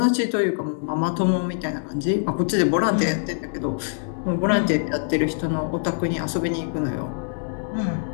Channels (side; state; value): right; silent; 63 dB below the other